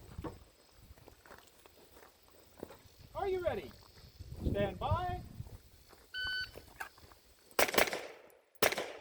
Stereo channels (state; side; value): identical; both; correlation 1.00